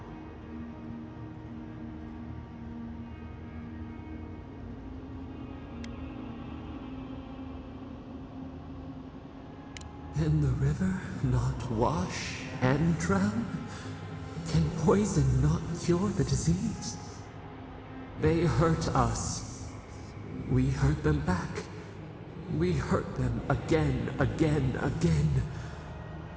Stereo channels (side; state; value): both; identical; correlation 1.00